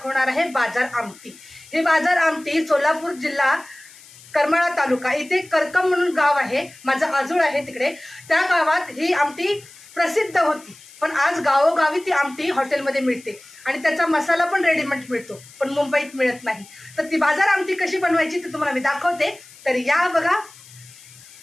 आहे बाजार आमटी। ही बाजार आमटी सोलापूर जिल्हा करमाळा तालुका इथे करकम म्हणून गाव आहे, माझं आजूळ आहे तिकडे। त्या गावात ही आमटी प्रसिद्ध होती, पण आज गावोगावी ती आमटी हॉटेलमध्ये मिळते आणि त्याचा मसाला पण रेडीमेड मिळतो, पण मुंबईत मिळत नाही। तर ती बाजार आमटी कशी बनवायची ते तुम्हाला मी दाखवते, तर या बघा।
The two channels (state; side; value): noise; left; hiss, 22 dB below the sound